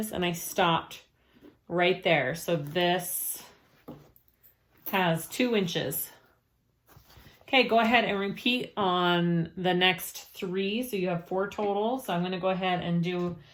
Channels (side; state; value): both; identical; correlation 1.00